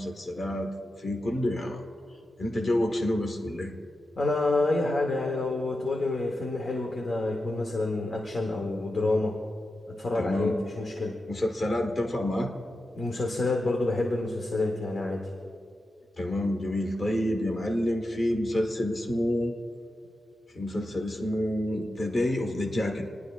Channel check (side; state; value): both; normal; correlation 0.90